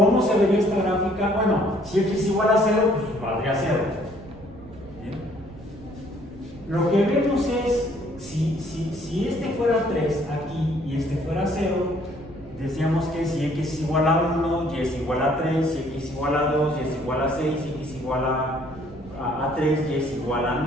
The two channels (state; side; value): noise; right; rumble, 20 dB below the sound